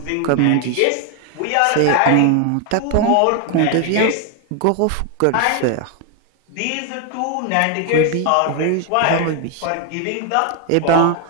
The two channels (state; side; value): different; both; correlation 0.01